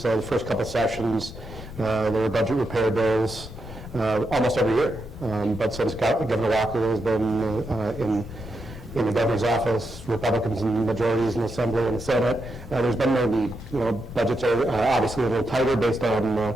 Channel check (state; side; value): normal; both; correlation 0.84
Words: The first couple sessions, there were budget repair bills almost every year. But since Governor Walker has been in the governor's office, Republicans in majorities in the Assembly and the Senate, there's been no need. Budgets are obviously a little tighter based on